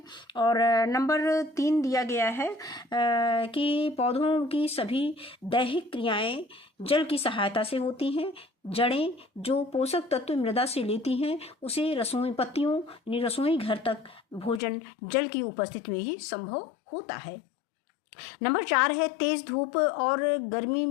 और नंबर 3 दिया गया है कि पौधों की सभी दैहिक क्रियाएं जल की सहायता से होती हैं। जड़ें जो पोषक तत्व मृदा से लेती हैं, उसे रसोई पत्तियों यानी रसोई घर तक भोजन जल की उपस्थिति में ही संभव होता है। नंबर 4 है तेज धूप और गर्मी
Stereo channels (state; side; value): drops out; right; at 14.6 s